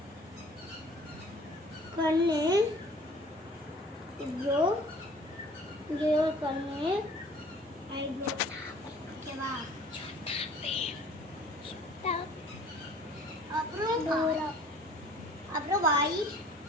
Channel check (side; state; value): both; normal; correlation 0.50